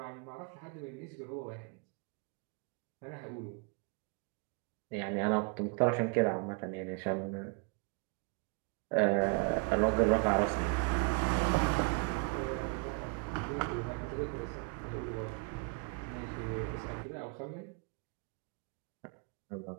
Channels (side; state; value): left; quieter; 30.9 dB